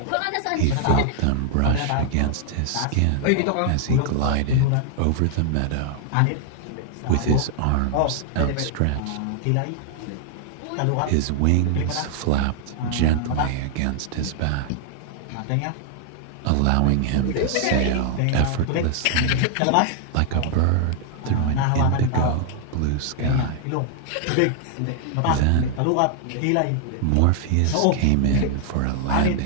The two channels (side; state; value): both; different; correlation 0.00